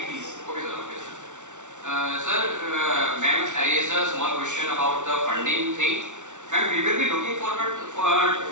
please. Okay, sir. Okay, sir. Sir, ma'am raised a small question about the funding thing. Ma'am, we will be looking forward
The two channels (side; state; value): left; late; 0.85 ms